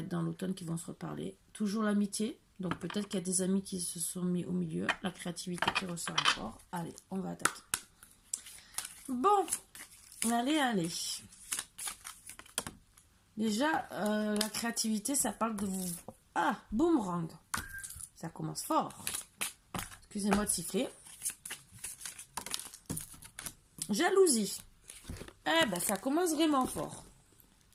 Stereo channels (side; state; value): both; identical; correlation 1.00